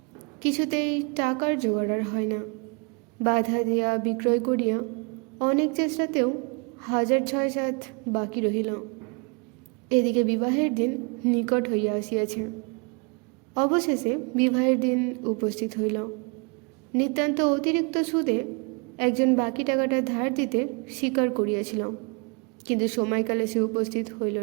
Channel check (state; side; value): quieter; left; 33.0 dB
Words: কিছুতেই টাকার জোগাড় আর হয় না। বাধা দিয়া বিক্রয় করিয়া অনেক চেষ্টাতেও 1,006-7 বাকি রহিল। এদিকে বিবাহের দিন নিকট হইয়া আসিয়াছে। অবশেষে বিবাহের দিন উপস্থিত হইল। নিতান্ত অতিরিক্ত সুদে একজন বাকি টাকাটা ধার দিতে স্বীকার করিয়াছিল, কিন্তু সময়কালে সে উপস্থিত হইল